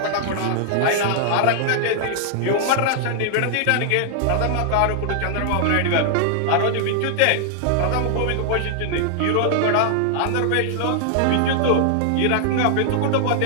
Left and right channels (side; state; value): both; different; correlation 0.00